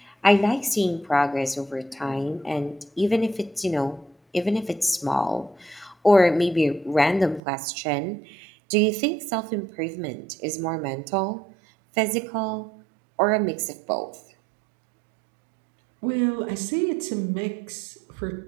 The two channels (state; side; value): drops out; left; at 7.4 s